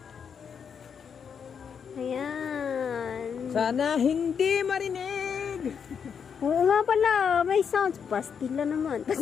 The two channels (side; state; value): right; quieter; 7.0 dB